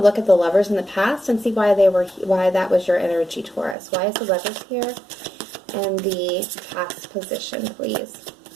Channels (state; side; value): drops out; left; at 3.8 s